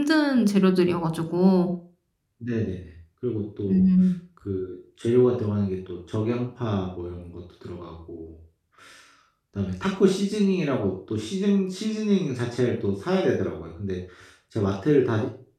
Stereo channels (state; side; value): identical; both; correlation 1.00